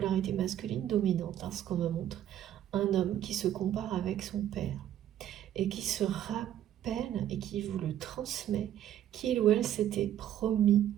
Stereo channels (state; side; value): quieter; left; 11.3 dB